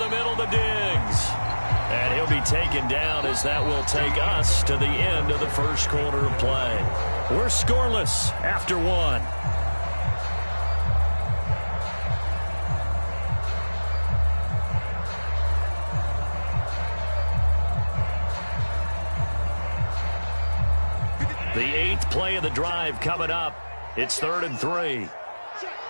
middle to Diggs. And he'll be taken down as that will take us to the end of the first quarter of play. We're scoreless after 1. The 8th play of the drive coming up. It's 3rd and 3.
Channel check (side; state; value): both; inverted; correlation -1.00